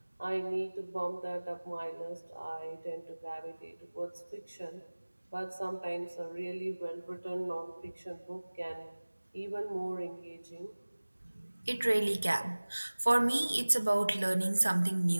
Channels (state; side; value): inverted; both; correlation -1.00